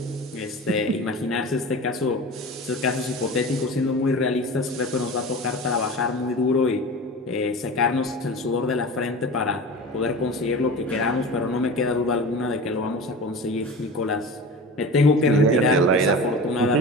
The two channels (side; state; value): both; normal; correlation 0.32